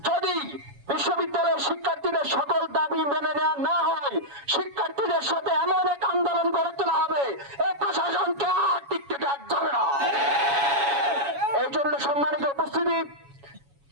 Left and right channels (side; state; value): left; late; 7.2 ms